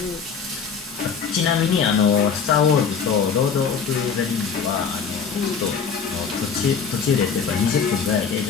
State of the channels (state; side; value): quieter; right; 6.3 dB